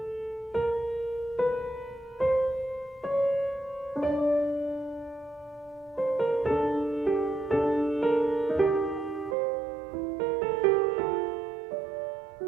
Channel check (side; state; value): left; drops out; at 9.3 s